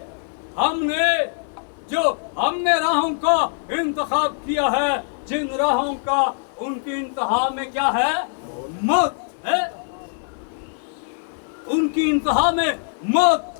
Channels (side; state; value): right; silent; digital silence